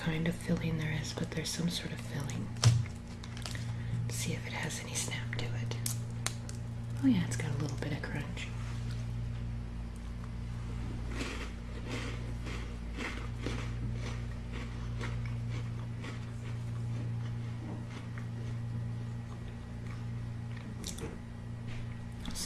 of filling there is, but there's some sort of filling. Let's see if it has any snap to it. Oh yeah, it's got a little bit of crunch.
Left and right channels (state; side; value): identical; both; correlation 1.00